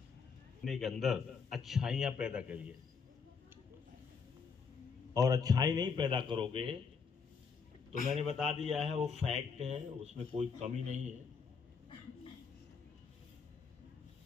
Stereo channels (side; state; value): right; quieter; 5.6 dB